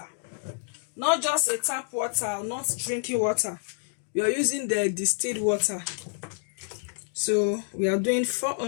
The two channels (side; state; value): right; silent; 59 dB below the other